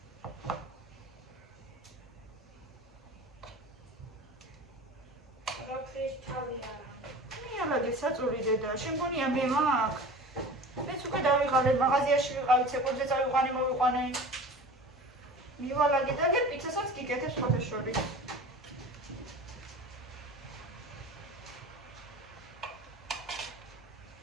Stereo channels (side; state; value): both; normal; correlation 0.37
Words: მიარაგე საწოლი დედა, შემგონია მე მაგ. მეც უკვე დავიღალე, მაღაზიაში ვიყავი, ცეკვებზე წავიყვანე, მოვიყვანე. მივალაგე და გერ პიცასაც გიკეთებ სხვათა შორის.